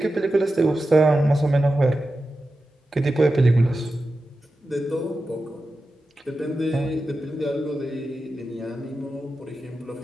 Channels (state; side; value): normal; both; correlation 0.92